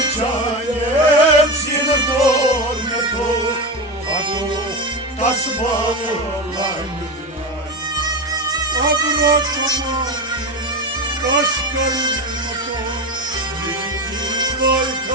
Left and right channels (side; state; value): both; normal; correlation 0.20